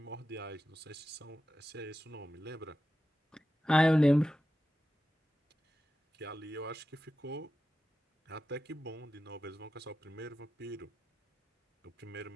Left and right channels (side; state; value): both; normal; correlation 0.92